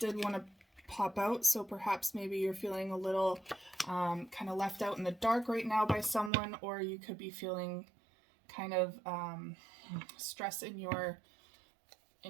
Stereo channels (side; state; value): left; drops out; at 6.3 s